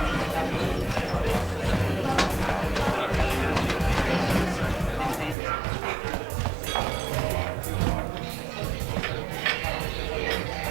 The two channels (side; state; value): left; drops out; at 5.4 s